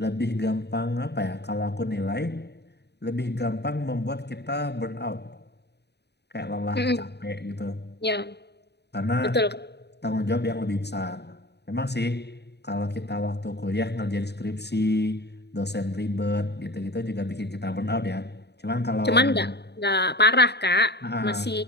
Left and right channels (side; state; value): right; late; 0.49 ms